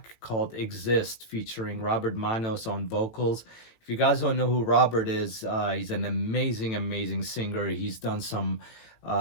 called Exist featuring Robert Manos on vocals. If you guys don't know who Robert is, he's an amazing singer. He's done some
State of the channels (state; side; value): late; right; 18 ms